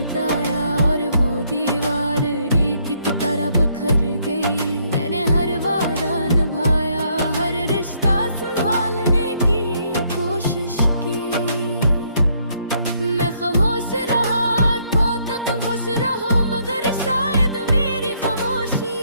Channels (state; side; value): inverted; both; correlation -0.70